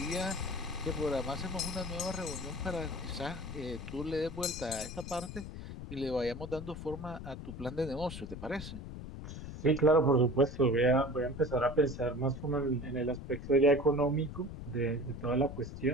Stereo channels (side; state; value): left; noise; rumble, 10 dB below the sound